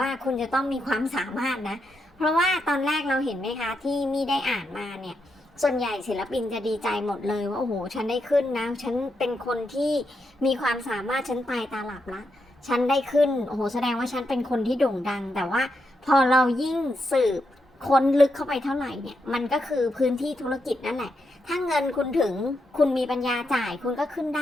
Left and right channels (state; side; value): normal; both; correlation 0.83